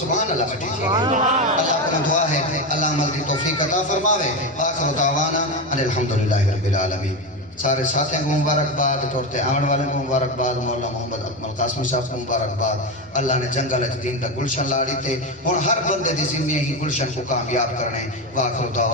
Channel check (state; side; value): normal; both; correlation 0.15